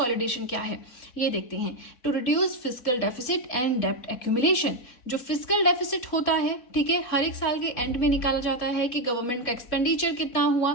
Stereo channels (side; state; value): right; late; 4.2 ms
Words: क्या है ये देखते हैं। To reduce fiscal deficit and डेब्ट एक्यूमुलेशन। जो फिस्कल डेफिसिट होता है, ठीक है, हर एक साल के एंड में निकाला जाता है कि गवर्नमेंट का एक्सपेंडिचर कितना